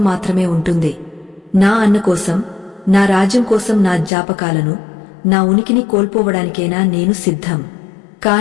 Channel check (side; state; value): right; drops out; at 4.1 s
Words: మాత్రమే ఉంటుంది. నా అన్న కోసం, నా రాజ్యం కోసం నా జ్ఞాపకాలను, నా ఉనికిని కోల్పోవడానికైనా నేను సిద్ధం,